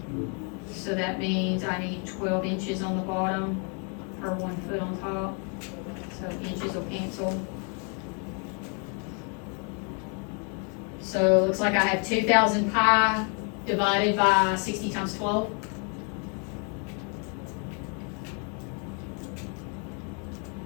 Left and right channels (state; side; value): quieter; right; 38.3 dB